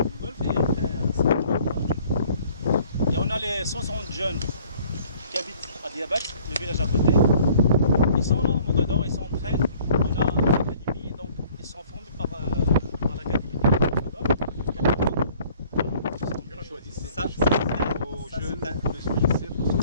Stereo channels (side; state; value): both; inverted; correlation -0.55